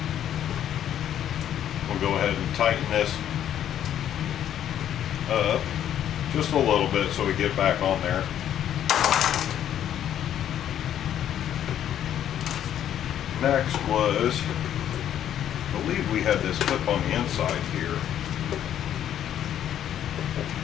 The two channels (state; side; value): quieter; right; 10.5 dB